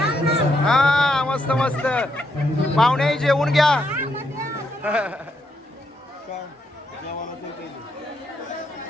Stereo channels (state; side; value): normal; both; correlation 0.78